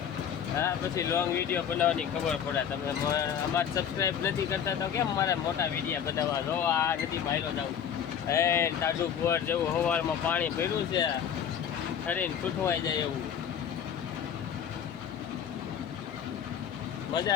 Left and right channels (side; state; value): right; quieter; 8.4 dB